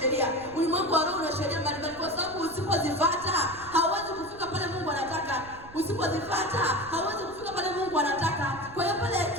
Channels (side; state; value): right; noise; rumble, 19 dB below the sound